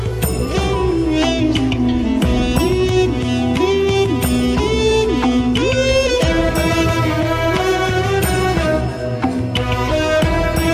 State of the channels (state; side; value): identical; both; correlation 1.00